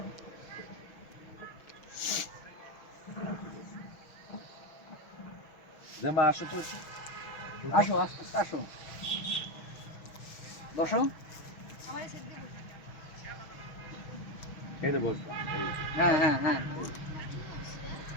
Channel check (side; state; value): right; late; 6.2 ms